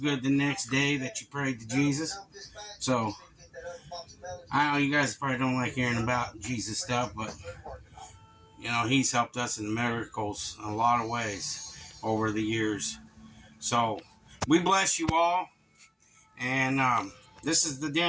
the next day that you prayed to Jesus. So, I know you guys probably don't like hearing about Jesus stuff, but, you know, he's helped us in miracles in a lot of ways over the years. So, we bless you all. And this is the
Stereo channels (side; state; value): both; identical; correlation 1.00